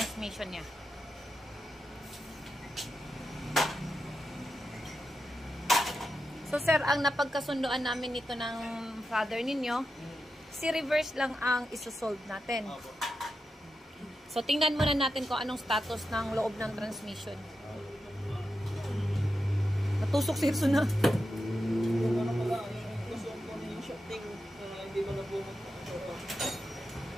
niya. So sir, ang napagkasunduan namin nito ng father ninyo, si reverse lang ang isosolve natin. So tingnan muna natin kung anong status ng loob ng transmission. Natusok si Hirso na.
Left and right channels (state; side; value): normal; both; correlation 0.89